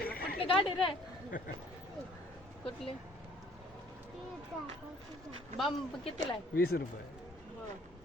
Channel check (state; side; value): normal; both; correlation 0.58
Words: कुठली गाडी रे कुठली बंब कितीला आहे 20 रुपये.